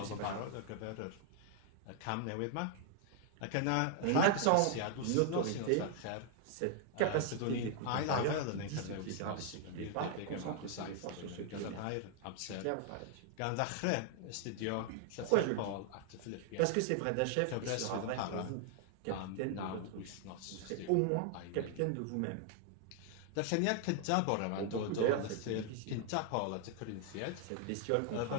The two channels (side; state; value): both; different; correlation 0.00